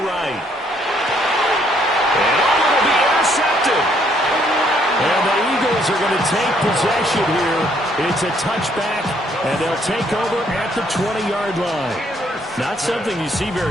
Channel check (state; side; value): normal; both; correlation 0.68